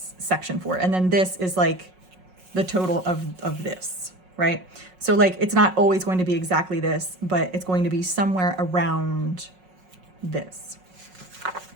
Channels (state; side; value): late; left; 5.5 ms